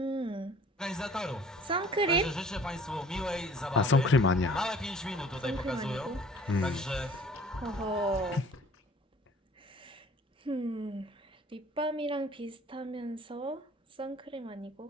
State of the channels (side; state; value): both; normal; correlation 0.51